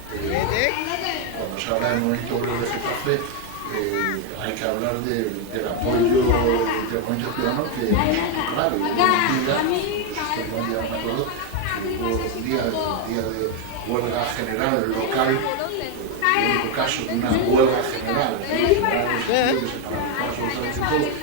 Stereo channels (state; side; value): different; both; correlation 0.02